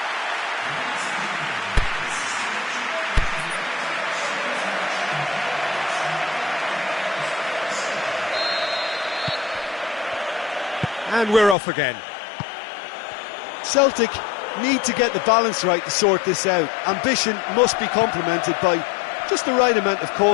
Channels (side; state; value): right; drops out; at 11.6 s